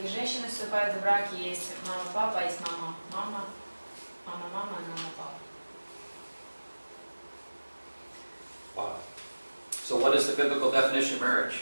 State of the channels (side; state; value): both; inverted; correlation -1.00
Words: женщины вступают в браки. Есть мама, папа, есть мама, мама, и мама, папа. Wow. So what is the biblical definition of marriage?